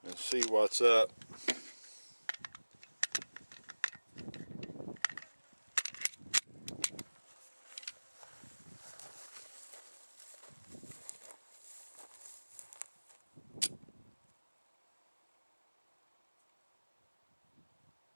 and see what's up.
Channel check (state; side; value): inverted; both; correlation -1.00